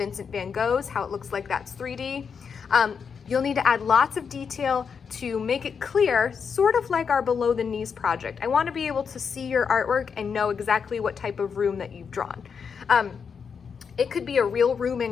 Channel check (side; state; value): right; quieter; 6.3 dB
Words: van Gogh's, how it looks like that's 3D. You'll need to add lots of detail to make it clear, sort of like our below the knees project. I want to be able to see your artwork and know exactly what type of room that you've drawn. It could be a real room